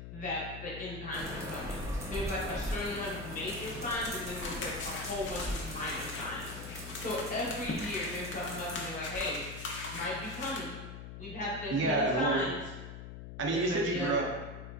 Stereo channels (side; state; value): left; noise; hum, 10 dB below the sound